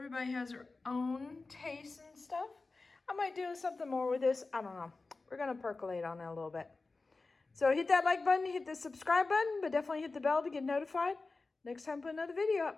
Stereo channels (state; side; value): quieter; right; 3.7 dB